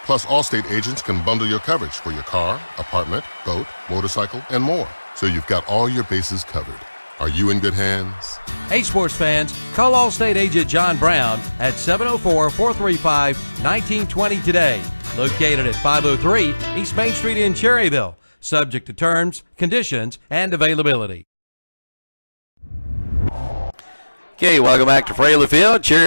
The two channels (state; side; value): inverted; both; correlation -1.00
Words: Plus, Allstate agents can bundle your coverage for your car, apartment, boat, motorcycle, and more. So you've got all your bases covered. Are you in good hands? Hey, sports fans, call Allstate agent John Brown at 704-435-1920 today. Located at 503 East Main Street in Cherryville. Subject to terms, conditions, and availability. Okay, welcome back to Fraley Field.